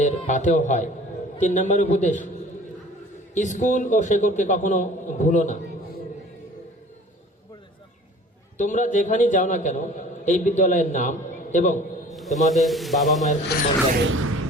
পাথেও হয়। 3 নম্বর উপদেশ, স্কুল ও শেকড়কে কখনো ভুলো না। তোমরা যেখানেই যাও না কেন, এই বিদ্যালয়ের নাম এবং তোমাদের বাবা মায়ের সম্মান যেন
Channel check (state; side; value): normal; both; correlation 0.47